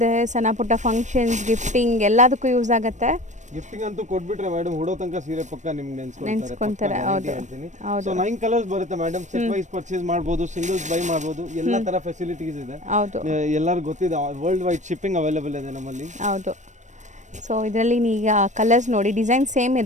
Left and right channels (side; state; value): left; late; 0.35 ms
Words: ಸಣ್ಣ ಪುಟ್ಟ ಫಂಕ್ಷನ್ಸ್, ಗಿಫ್ಟಿಂಗ್ ಎಲ್ಲದಕ್ಕೂ ಯೂಸ್ ಆಗುತ್ತೆ. ಗಿಫ್ಟಿಂಗ್ ಅಂತೂ ಕೊಟ್ಬಿಟ್ರೆ ಮೇಡಮ್, ಹುಡೋ ತನಕ ಸೀರೆ ಪಕ್ಕ ನಿಮ್ಗೆ ನೆನ್ಸ್ಕೊಂತಾರೆ. ಹೌದು. ಸೊ 9 ಕಲರ್ಸ್ ಬರುತ್ತೆ ಮೇಡಮ್. ಸೆಟ್ ವೈಸ್ ಪರ್ಚೇಸ್ ಮಾಡ್ಬೋದು, ಸಿಂಗಲ್ಸ್ ಬೈ ಮಾಡ್ಬೋದು. ಎಲ್ಲ ತರ ಫೆಸಿಲಿಟೀಸ್ ಇದೆ. ಹೌದು, ಎಲ್ಲರಿಗೂ ಗೊತ್ತಿದೆ. ವರ್ಲ್ಡ್ ವೈಡ್ ಶಿಪ್ಪಿಂಗ್ ಅವೈಲೇಬಲ್ ಇದೆ ನಮ್ಮಲ್ಲಿ. ಹೌದು. ಸೊ ಇದರಲ್ಲಿ ಈಗ ಕಲರ್ಸ್ ನೋಡಿ, ಡಿಸೈನ್ ಸೇಮ್